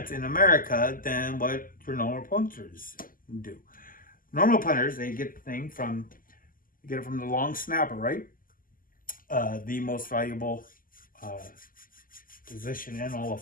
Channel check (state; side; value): late; right; 0.41 ms